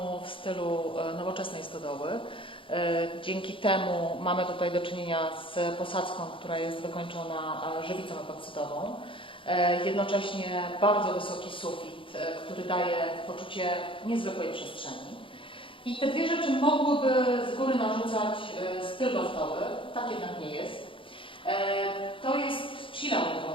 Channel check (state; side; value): late; right; 0.25 ms